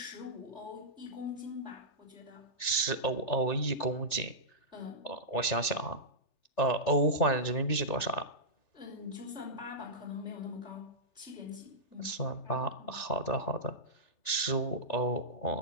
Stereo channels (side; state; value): right; late; 3.4 ms